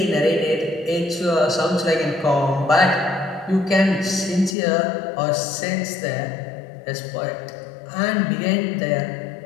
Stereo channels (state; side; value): drops out; right; at 4.5 s